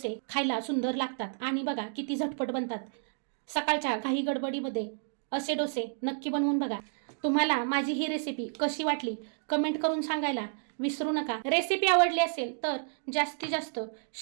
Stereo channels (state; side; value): silent; left; digital silence